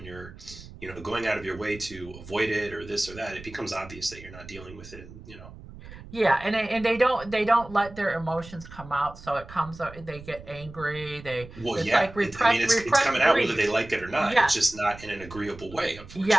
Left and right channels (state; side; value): noise; right; rumble, 16 dB below the sound